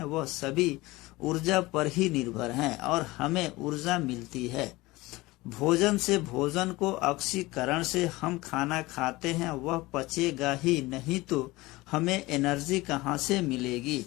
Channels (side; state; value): right; quieter; 20.5 dB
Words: वह सभी ऊर्जा पर ही निर्भर हैं और हमें ऊर्जा मिलती है भोजन से। भोजन को ऑक्सीकरण से हम खाना खाते हैं, वह पचेगा ही नहीं तो हमें एनर्जी कहाँ से मिलेगी।